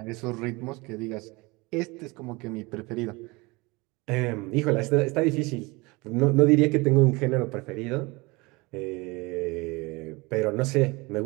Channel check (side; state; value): left; quieter; 24.8 dB